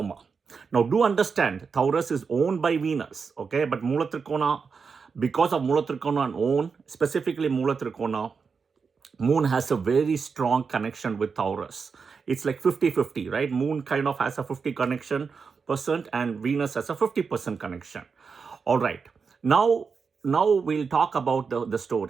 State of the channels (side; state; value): left; quieter; 5.4 dB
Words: Now, do understand, Taurus is owned by Venus, okay? But Mula Trikona, because of Mula Trikona own, specifically Mula Trikona, Moon has a very strong connection with Taurus. It's like 50-50, right? Moon kind of has a 50 connection percent, and Venus has a 50% connection. All right. Now we'll talk about the